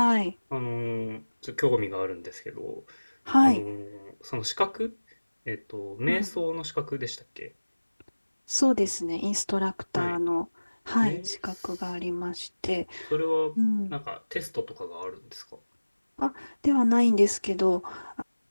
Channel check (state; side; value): inverted; both; correlation -1.00